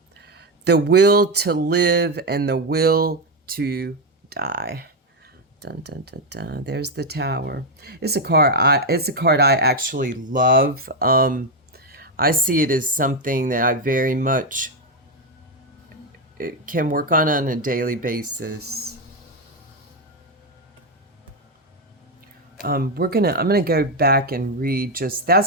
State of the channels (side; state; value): both; normal; correlation 0.06